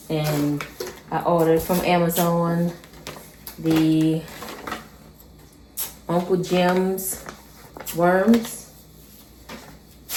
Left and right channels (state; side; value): identical; both; correlation 1.00